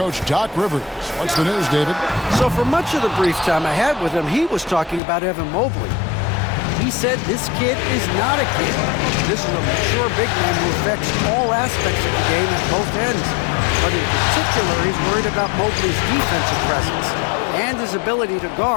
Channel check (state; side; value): drops out; right; at 5.0 s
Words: Doc Rivers. What's the news, David? So for much of the brief time I had with him, he was talking about Evan Mobley. He said this kid is not a kid. This is a mature big man who affects all aspects of the game at both ends. But in particular, he's worried about Mobley's defensive presence and his ability to